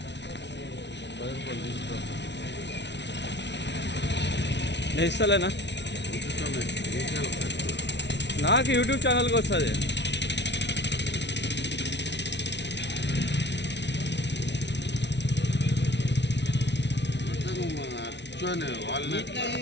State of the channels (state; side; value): late; right; 0.51 ms